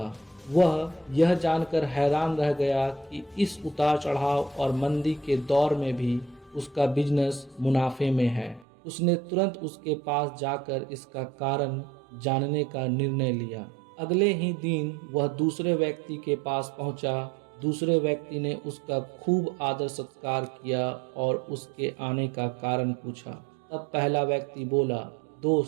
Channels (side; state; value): left; drops out; at 8.7 s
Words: वह यह जानकर हैरान रह गया कि इस उतार चढ़ाव और मंदी के दौर में भी उसका बिजनेस मुनाफे में है। उसने तुरंत उसके पास जाकर इसका कारण जानने का निर्णय लिया। अगले ही दिन वह दूसरे व्यक्ति के पास पहुंचा। दूसरे व्यक्ति ने उसका खूब आदर सत्कार किया और उसके आने का कारण पूछा। तब पहला व्यक्ति बोला,